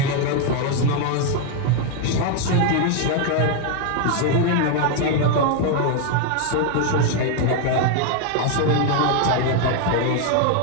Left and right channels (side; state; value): both; different; correlation 0.01